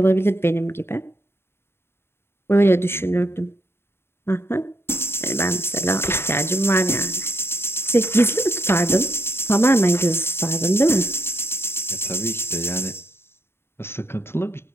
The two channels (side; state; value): right; late; 0.11 ms